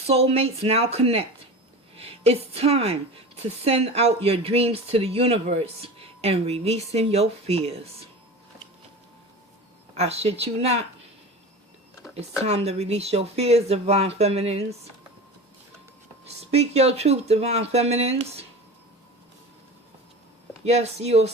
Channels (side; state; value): both; normal; correlation 0.32